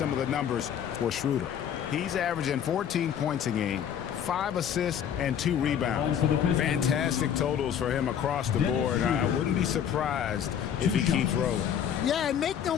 of the numbers for Schroeder. He's averaging 14 points a game, 5 assists, and 2 rebounds. Fantastic totals for him across the board. I wouldn't be surprised if he keeps rolling. Yeah, and make no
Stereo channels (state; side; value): quieter; right; 8.9 dB